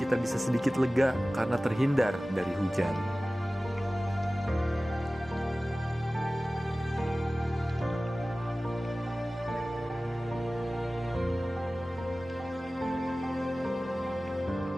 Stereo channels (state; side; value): normal; both; correlation 0.97